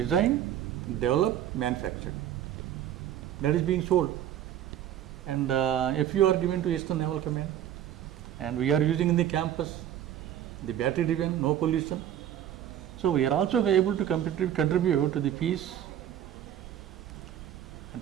developed, manufactured. That is being sold. And if you are given to Eastern Naval Command, and we are using in the campus, the battery driven, no pollution. So we are also able to contribute to the peace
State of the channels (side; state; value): left; quieter; 11.0 dB